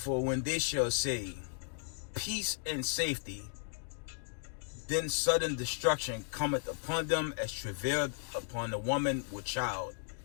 when they shall say, peace and safety, then sudden destruction cometh upon them as travail upon the woman with child,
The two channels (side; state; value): right; silent; digital silence